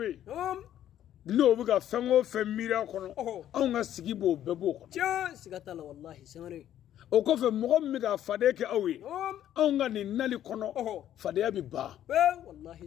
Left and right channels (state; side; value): quieter; right; 11.4 dB